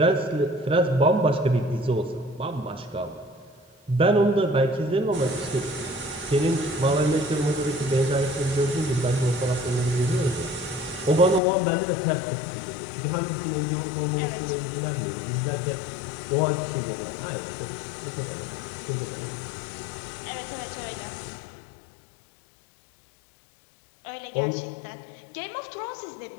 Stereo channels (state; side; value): drops out; right; at 11.4 s